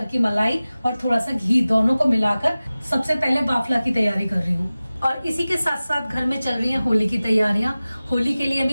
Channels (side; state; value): both; inverted; correlation -0.97